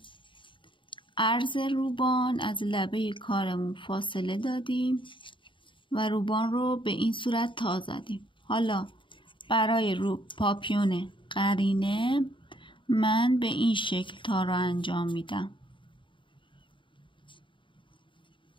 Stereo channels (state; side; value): late; right; 0.24 ms